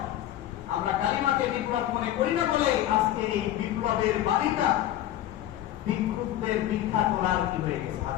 আমরা কালিমাকে বিপ্লব মনে করি না বলেই আজকে এই বিপ্লবের বাণীটা ভিক্ষুকদের ভিক্ষা তোলার কি হয়ে গেছে,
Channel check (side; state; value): right; quieter; 12.8 dB